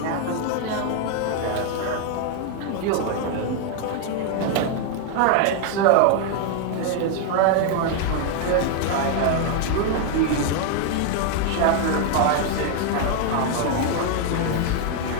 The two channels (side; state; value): both; different; correlation 0.00